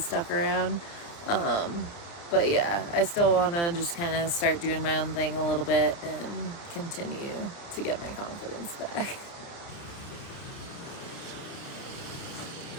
around. But yeah, I still want to just kind of start doing my own thing a little bit and continue to get my confidence back.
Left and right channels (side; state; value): right; late; 29 ms